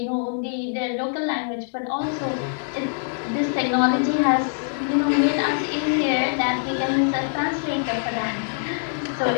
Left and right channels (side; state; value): right; silent; 63 dB below the other